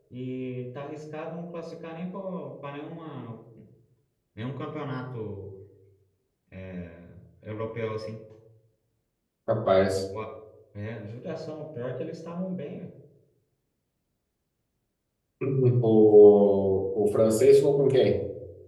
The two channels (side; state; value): both; identical; correlation 1.00